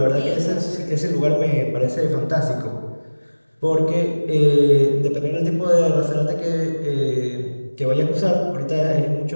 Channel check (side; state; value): both; inverted; correlation -1.00